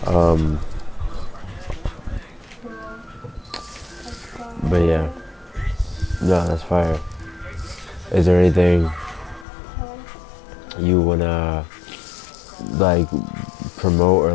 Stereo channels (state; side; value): drops out; right; at 9.5 s